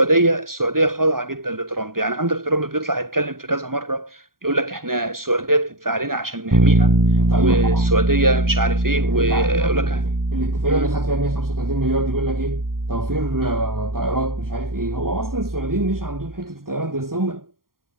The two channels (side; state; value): left; late; 0.92 ms